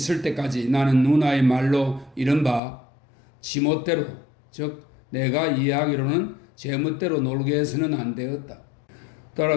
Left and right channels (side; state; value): right; drops out; at 2.6 s